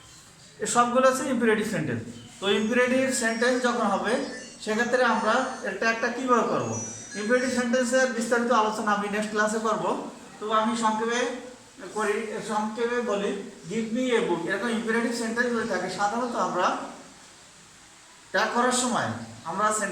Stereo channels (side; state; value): both; identical; correlation 1.00